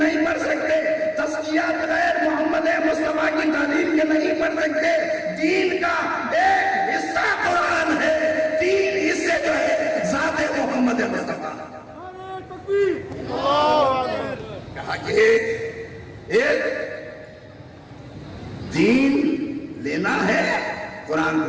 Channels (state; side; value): identical; both; correlation 1.00